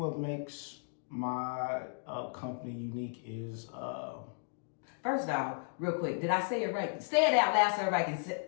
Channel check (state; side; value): silent; right; digital silence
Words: makes my company unique is first off, real quick, did I say it right? Say it out loud so everybody can